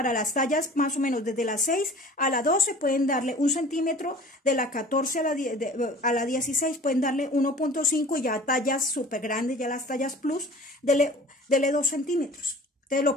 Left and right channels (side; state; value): both; normal; correlation 0.44